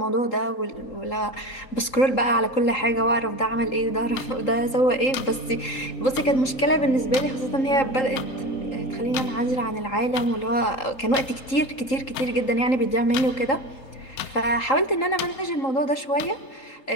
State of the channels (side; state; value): right; late; 3.8 ms